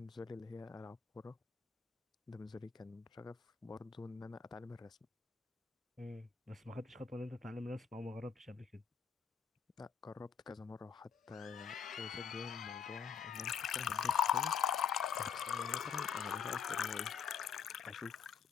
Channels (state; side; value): quieter; right; 7.0 dB